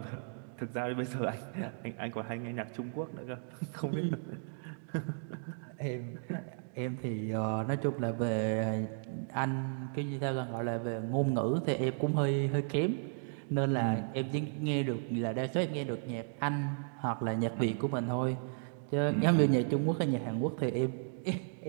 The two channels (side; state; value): left; silent; digital silence